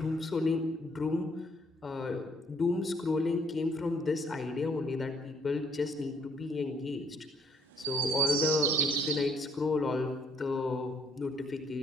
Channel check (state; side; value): normal; both; correlation 0.65